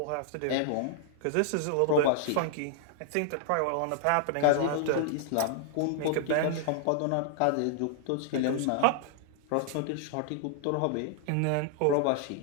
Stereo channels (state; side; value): different; both; correlation 0.00